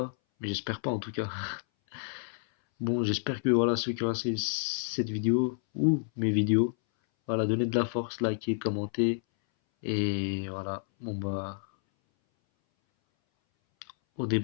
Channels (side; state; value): right; silent; 58 dB below the other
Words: Mais j'espère pas, en tout cas. Bon, j'espère que voilà, ceux qui ont regardé cette vidéo ou mes vidéos, voilà, donnez de la force, likez, commentez. Et voilà, bon bah, au